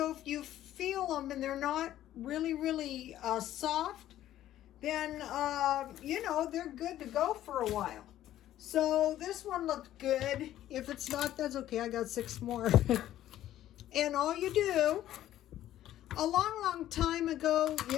if you feel them and they're not really soft, then, they're good to go for a while. So this one looked good. If it's not, that's okay. I got 6 more. And all you do, a long time ago,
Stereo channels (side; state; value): right; quieter; 12.9 dB